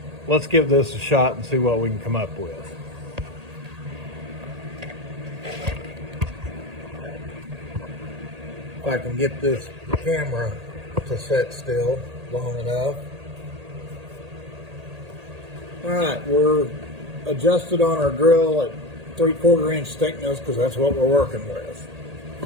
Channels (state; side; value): late; left; 1.8 ms